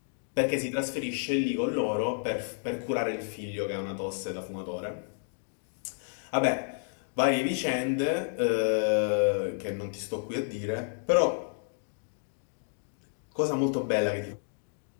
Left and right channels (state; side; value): silent; right; digital silence